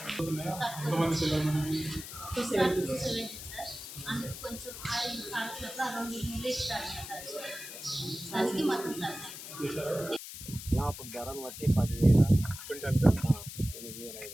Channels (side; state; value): left; noise; hiss, 11 dB below the sound